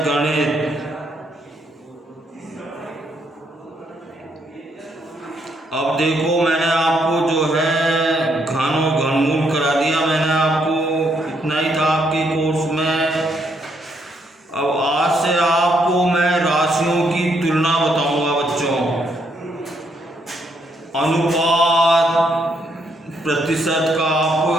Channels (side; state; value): both; normal; correlation 0.74